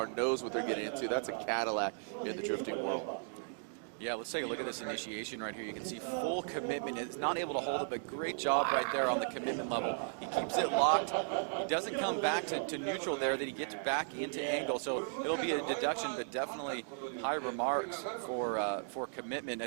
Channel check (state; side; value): silent; left; digital silence